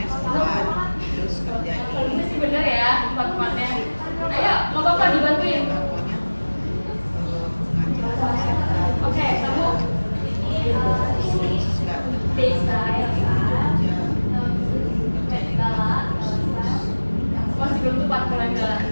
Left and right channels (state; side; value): inverted; both; correlation -1.00